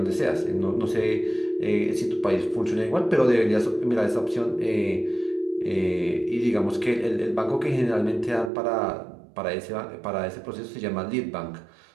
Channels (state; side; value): drops out; left; at 8.5 s